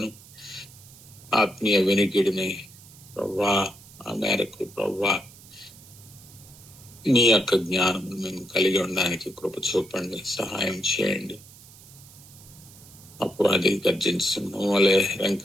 ఆత్మీయ వినికిడిని ప్రభువా ఆ మేరకు ప్రభువా మీ యొక్క జ్ఞానము మేము కలిగి ఉండడానికి కృప చూపండి, సహాయం చేయండి. అపవాది గర్జించిన వలె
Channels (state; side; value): noise; right; hiss, 21 dB below the sound